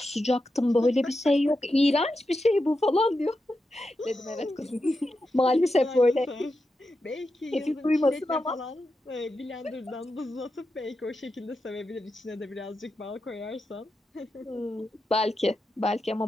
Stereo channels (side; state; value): both; normal; correlation 0.88